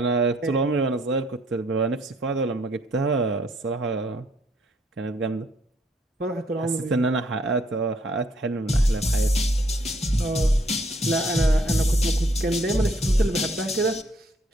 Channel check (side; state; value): both; normal; correlation 0.67